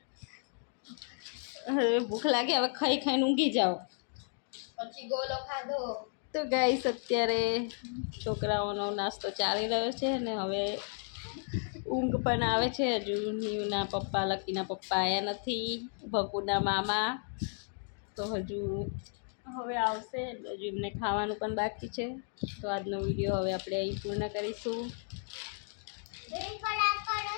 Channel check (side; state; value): right; silent; 55 dB below the other